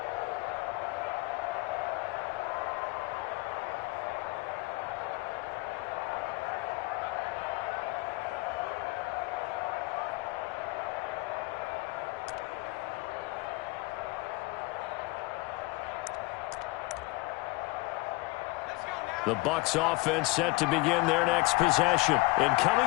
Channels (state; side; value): quieter; right; 23.7 dB